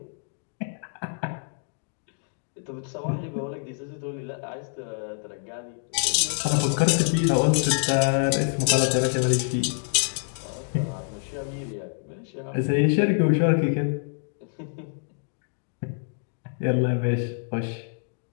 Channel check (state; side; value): silent; right; digital silence